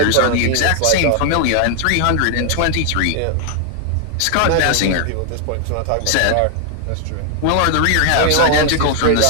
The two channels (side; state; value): both; different; correlation 0.00